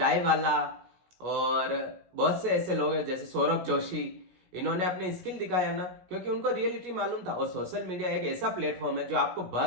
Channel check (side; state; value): left; late; 17 ms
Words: वाला, और बहुत से ऐसे लोग हैं जैसे सौरभ जोशी, इन्होंने अपनी स्किल दिखाया ना, क्योंकि उनको रियलिटी मालूम था। और सोशल मीडिया एक ऐसा प्लेटफॉर्म है जो आपको